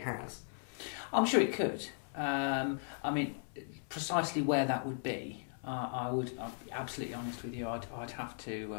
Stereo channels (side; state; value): right; silent; 53 dB below the other